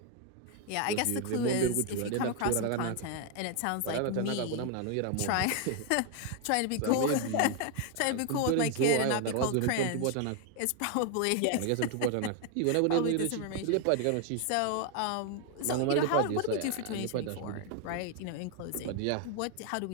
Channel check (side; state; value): both; different; correlation 0.01